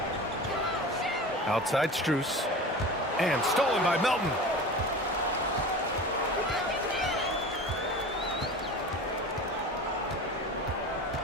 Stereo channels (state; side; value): normal; both; correlation 0.34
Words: Outside Strus. And stolen by Melton.